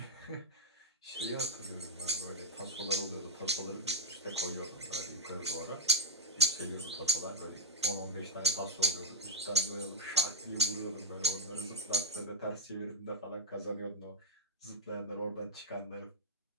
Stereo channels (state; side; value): normal; both; correlation -0.06